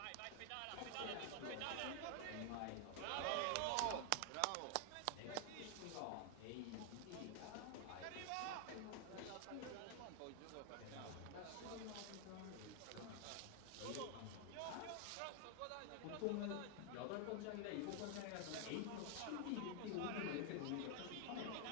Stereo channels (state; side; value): different; both; correlation 0.00